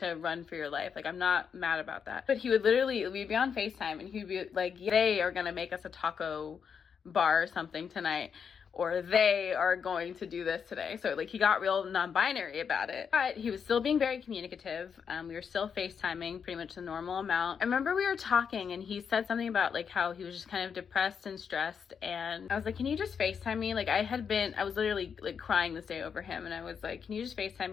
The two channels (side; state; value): right; quieter; 6.8 dB